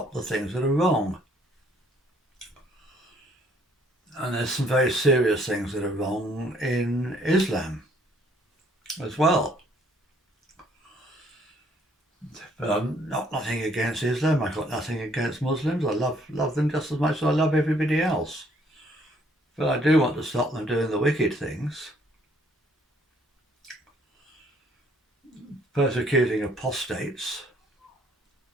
the things that are wrong. And there's some very serious things that are wrong in Islam as well. But I'm nothing against Islam. I've got nothing against Muslims. I love them just as much as I love everybody else. But I do want to stop them doing the wicked things. Persecuting apostates.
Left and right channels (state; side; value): normal; both; correlation 0.64